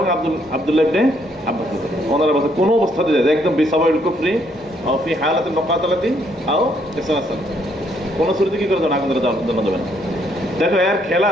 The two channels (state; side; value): normal; both; correlation 0.70